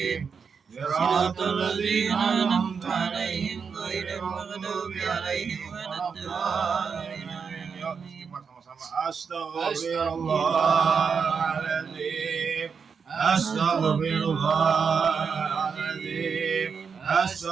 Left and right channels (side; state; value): left; quieter; 6.0 dB